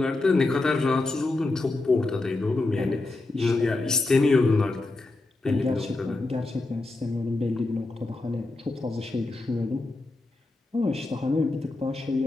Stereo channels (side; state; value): right; quieter; 3.1 dB